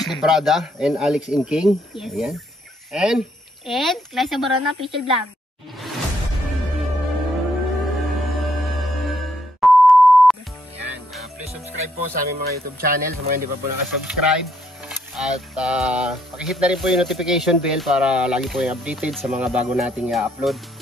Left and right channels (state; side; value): normal; both; correlation 0.73